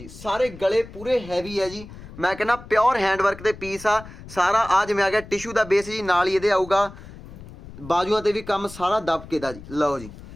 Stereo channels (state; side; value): noise; left; rumble, 16 dB below the sound